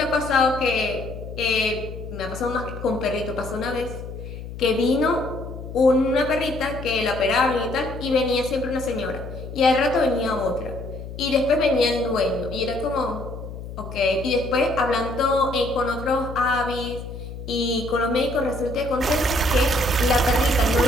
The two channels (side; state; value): left; noise; hum, 10 dB below the sound